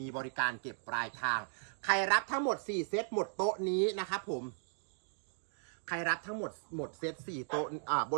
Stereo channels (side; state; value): left; silent; digital silence